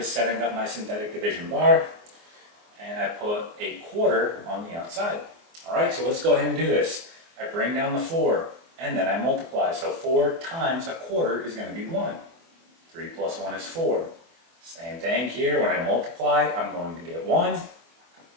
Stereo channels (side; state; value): left; late; 24 ms